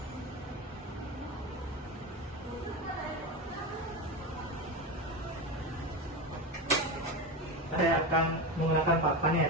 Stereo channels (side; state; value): both; normal; correlation 0.19